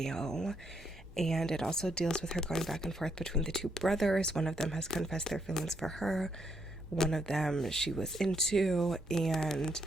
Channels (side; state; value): both; normal; correlation 0.75